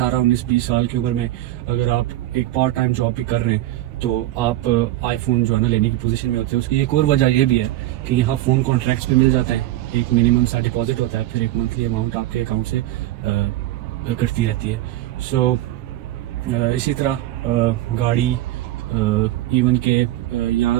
سال کی عمر میں اگر آپ ایک پارٹ ٹائم جاب بھی کر رہے ہیں تو آپ آئی فون جو ہے نا لینے کی پوزیشن میں ہوتے ہیں. اس کی ایک اور وجہ یہ بھی ہے کہ یہاں فون کانٹریکٹس پہ مل جاتے ہیں, ایک منیمم سا ڈپازٹ ہوتا ہے, پھر ایک منتھلی اماؤنٹ آپ کے اکاؤنٹ سے کرتی رہتی ہے. سو اسی طرح گاڑی ایون کہ یہاں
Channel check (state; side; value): quieter; left; 15.2 dB